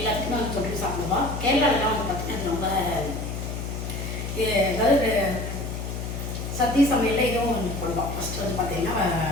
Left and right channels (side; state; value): left; noise; hum, 5 dB below the sound